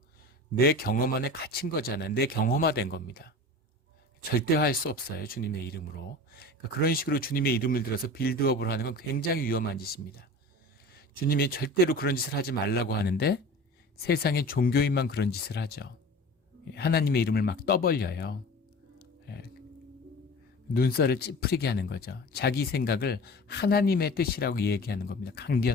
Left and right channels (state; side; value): normal; both; correlation 0.37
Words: 내 경험 안에 갇힌 거잖아요. 내 경험화된 겁니다. 절대화할 수 없어요. 주님의 이름으로. 그러니까 그런 식으로 주님의 이름을 들어서 빌드업을 하는 건 굉장히 위험한 짓입니다. 주님이 절대로 그런 짓을 하지 말라고 하는데 세상의 종교인만 그런 짓을 하죠. 하나님의 이름을 막 떠벌려요. 눈살을 찌푸리게 하는 거죠. 자기 생각을 하나님의 뜻이라고 얘기하는 겁니다.